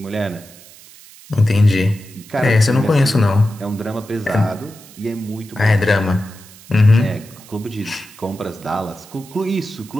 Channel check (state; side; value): noise; right; hiss, 21 dB below the sound